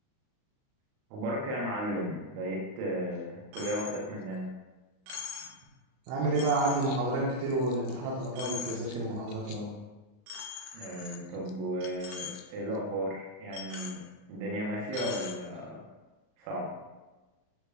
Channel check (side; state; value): left; late; 38 ms